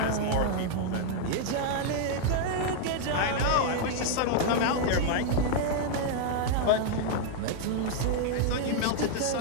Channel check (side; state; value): both; different; correlation 0.00